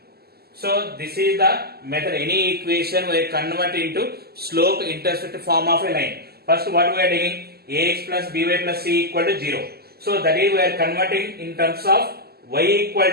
So this is the method. Any equation we convert into slope intercept form of a line. First what we are taking, ax plus by plus c equal to 0. So that is we are converting in terms of y equal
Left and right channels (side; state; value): left; late; 0.46 ms